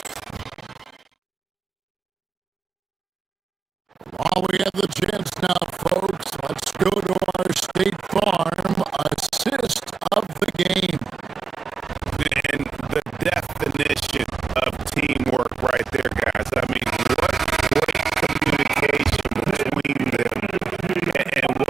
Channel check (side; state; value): left; quieter; 5.3 dB